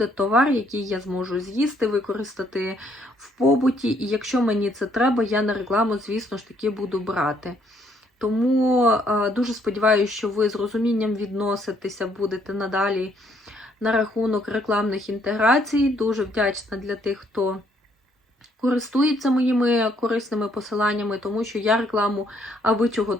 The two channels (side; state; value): both; normal; correlation 0.68